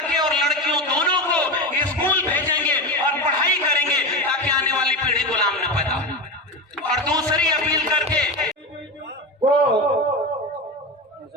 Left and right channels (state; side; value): normal; both; correlation 0.20